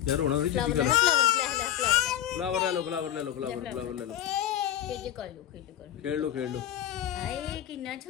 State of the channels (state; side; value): quieter; right; 11.9 dB